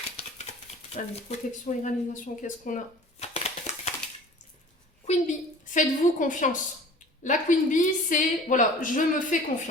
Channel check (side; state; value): both; normal; correlation 0.44